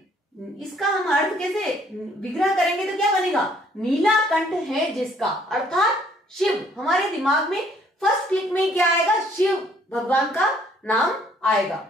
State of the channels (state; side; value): normal; both; correlation 0.63